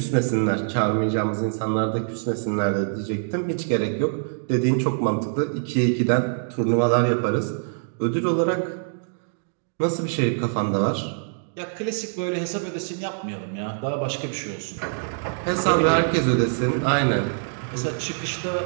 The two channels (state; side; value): silent; left; digital silence